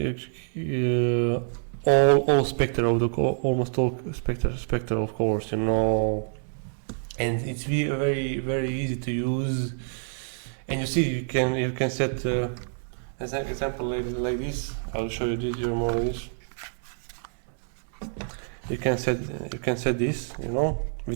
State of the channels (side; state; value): left; silent; digital silence